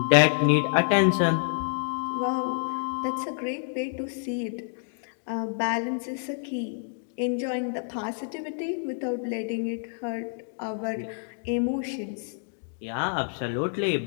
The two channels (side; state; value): right; silent; 59 dB below the other